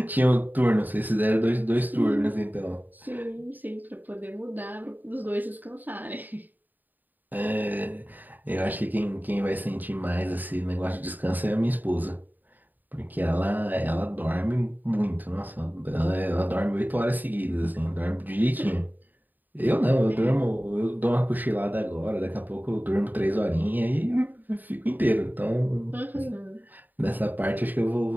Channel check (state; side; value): late; left; 0.087 ms